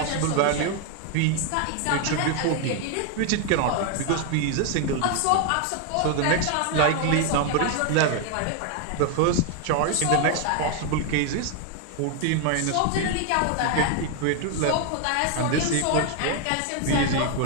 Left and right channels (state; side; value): different; both; correlation 0.01